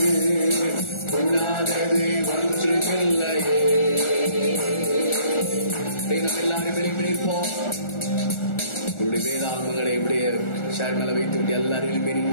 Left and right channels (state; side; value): late; right; 1.4 ms